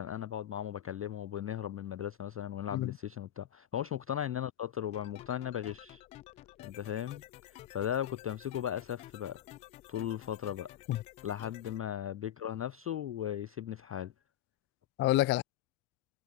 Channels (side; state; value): right; quieter; 11.5 dB